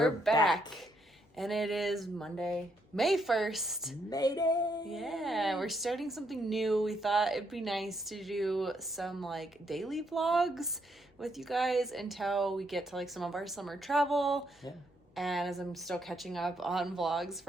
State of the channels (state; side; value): normal; both; correlation 0.75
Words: back. And it is Monday, May 1st. Mayday! Yeah, we're starting something new. We thought it'd be nice to do some like daily vlogs with you guys until we get to like some of our summer travel. Yeah. And as I'm still catching up on vlogs